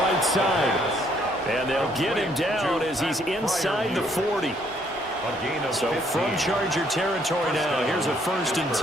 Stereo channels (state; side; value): normal; both; correlation 0.67